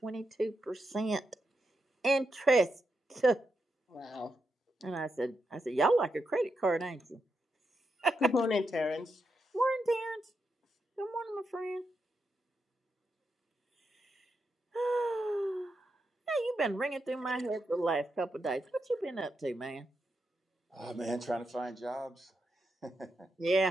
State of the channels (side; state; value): both; normal; correlation 0.84